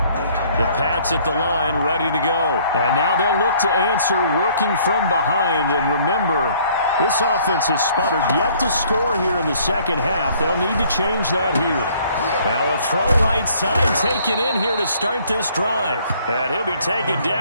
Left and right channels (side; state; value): both; inverted; correlation -0.60